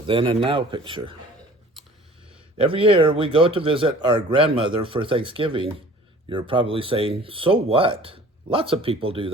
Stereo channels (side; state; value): both; normal; correlation 0.48